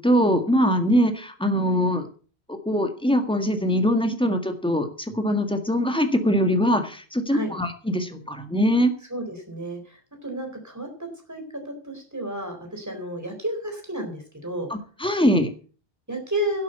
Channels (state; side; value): normal; both; correlation 0.48